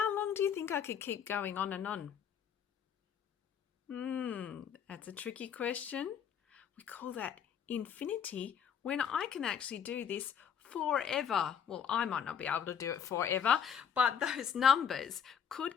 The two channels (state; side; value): quieter; right; 8.0 dB